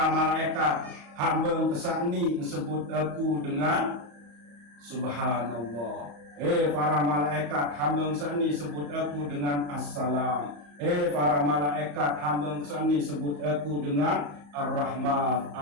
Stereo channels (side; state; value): left; late; 34 ms